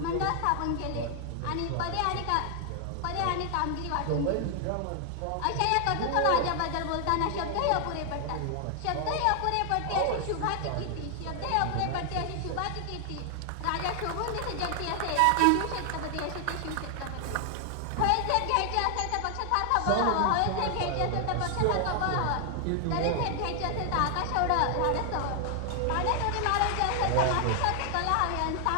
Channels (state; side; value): different; both; correlation 0.00